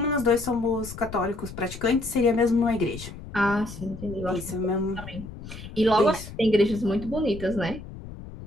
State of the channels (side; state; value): left; noise; rumble, 13 dB below the sound